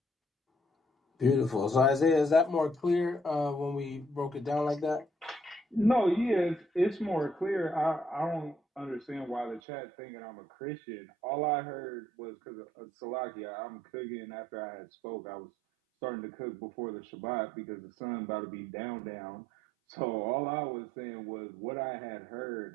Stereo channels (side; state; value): left; drops out; at 9.6 s